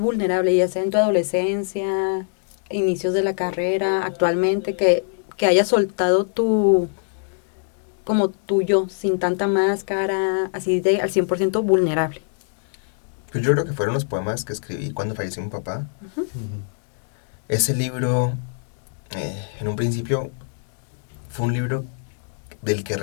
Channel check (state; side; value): silent; right; digital silence